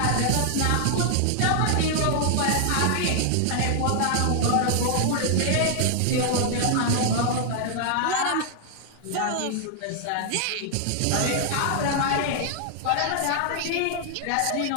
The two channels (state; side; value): different; both; correlation 0.00